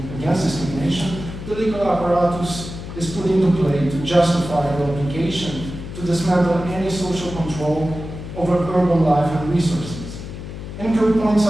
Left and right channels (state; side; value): noise; left; hum, 10 dB below the sound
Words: Against Discrimination. The legal apparatus is put into play to justify the obligation to dismantle any social control over urban life and resources. Enikő points